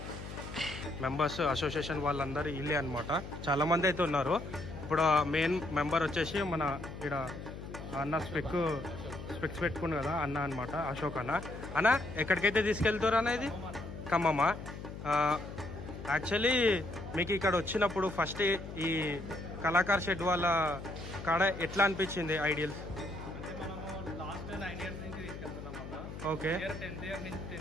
మెంబర్స్ అసోసియేషన్ వాళ్ళందరూ ఇల్లే అనమాట. చాలామంది అయితే ఉన్నారు. ఇప్పుడు మెయిన్ మెంబర్ వచ్చేసి మన ఇక్కడ అన్న స్పెక్స్ పెట్టుకున్నాడు కదా అన్న అనమాట, అశోక్ అన్న. అన్న ఎక్కడికైతే తీసుకెళ్తారు అనేది ఖమ్మమా? యాక్చువల్లీ మీకు ఇక్కడ వచ్చినప్పుడు ఫస్ట్ ఈ కళాకార్ షెడ్ వాళ్ళ కాడ ఎట్లా అనిపించింది ఐడియల్? ఓకే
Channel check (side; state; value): left; noise; hum, 10 dB below the sound